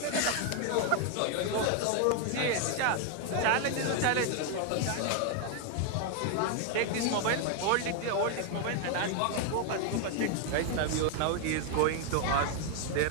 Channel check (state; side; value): different; both; correlation 0.01